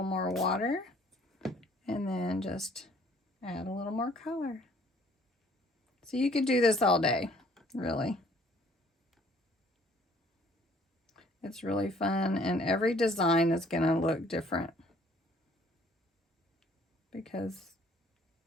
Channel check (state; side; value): normal; both; correlation 0.58